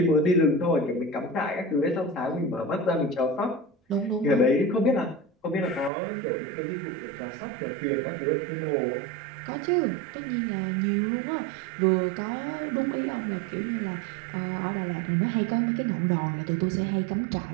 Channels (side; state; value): left; drops out; at 5.9 s